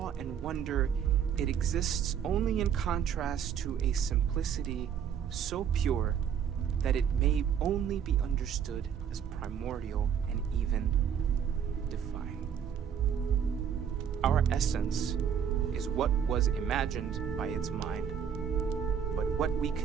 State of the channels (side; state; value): left; quieter; 8.1 dB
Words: and wonder, it exists only in contrast to a simplicity so pure that it may only be understood as primordial and even divine. Our essence is what was imagined by its mind, but what we